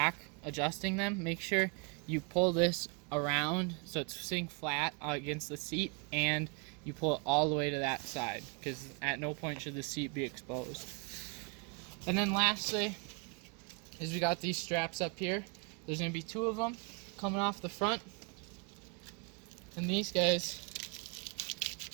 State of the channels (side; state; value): left; quieter; 33.5 dB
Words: adjusting them, make sure you pull this around so it's sitting flat against the seat, and you pull it all the way to that side, because at no point should the seat be exposed. And then lastly is we got these straps up here. There's going to be 2 of them coming off the front, and these guys,